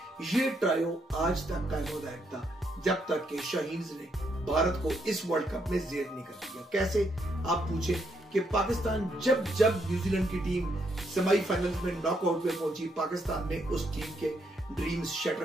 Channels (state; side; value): normal; both; correlation 0.76